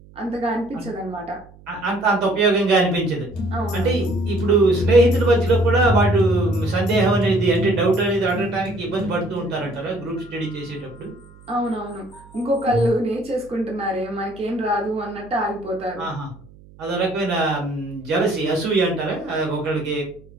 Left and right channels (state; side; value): noise; right; hum, 23 dB below the sound